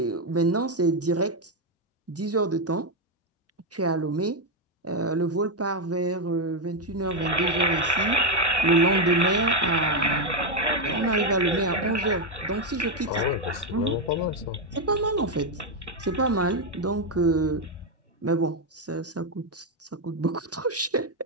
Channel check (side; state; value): both; normal; correlation 0.04